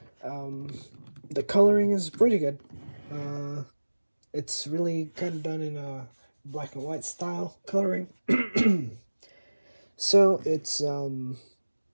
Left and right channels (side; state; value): both; inverted; correlation -1.00